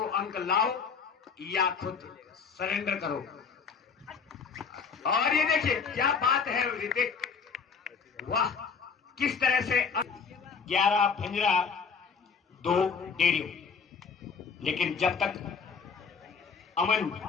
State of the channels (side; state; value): right; quieter; 5.8 dB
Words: अंक लाओ या खुद सरेंडर करो। और ये देखिए क्या बात है ऋतिक, वाह किस तरह से 11 भंजरा 2 डेरियो। लेकिन जब तक अमन